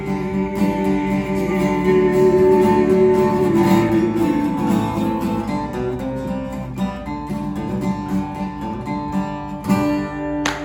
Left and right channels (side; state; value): both; identical; correlation 1.00